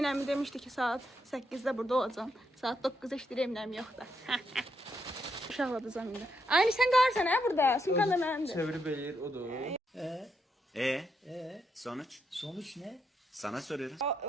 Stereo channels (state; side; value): normal; both; correlation 0.80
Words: əmi demişdi ki, saat 8-də burada olacam. Saat 9-da işləyir, Emin əmi yoxdur. Uşaqladacam indi. Aynı sən qarsan hə burada? Sumkan da mənimdir. Çevirip eğir, o da o. Sonuç? Sonuç ne? Sana soruyorum.